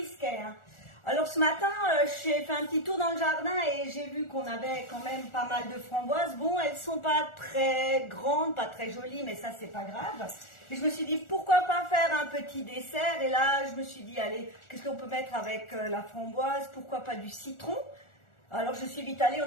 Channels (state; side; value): late; right; 1.4 ms